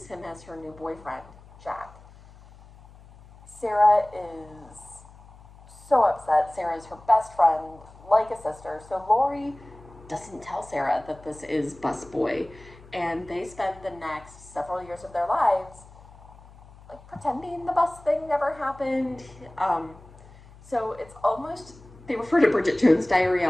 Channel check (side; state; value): left; noise; hum, 22 dB below the sound